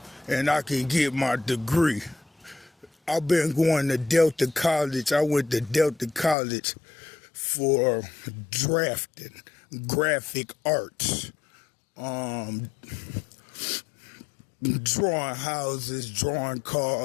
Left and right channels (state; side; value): drops out; right; at 6.4 s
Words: and I can get my degree. I've been going to Delta College. I went to Delta College for drafting, graphic arts, drawing houses, drawing